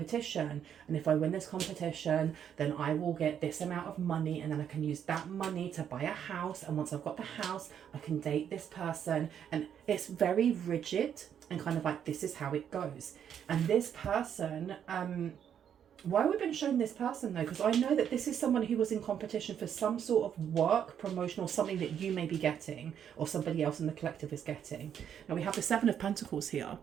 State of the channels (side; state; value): left; quieter; 8.8 dB